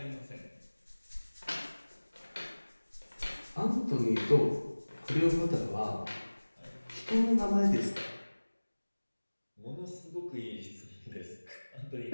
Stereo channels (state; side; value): inverted; both; correlation -1.00